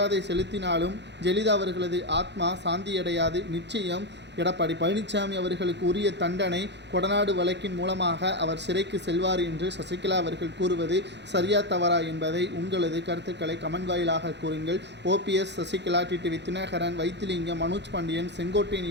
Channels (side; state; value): left; late; 0.51 ms